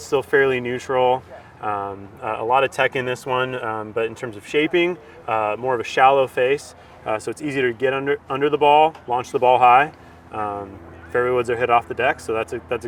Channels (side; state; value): both; identical; correlation 1.00